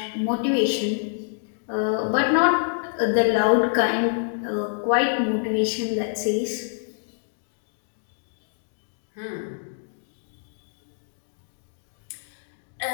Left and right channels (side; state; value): right; silent; digital silence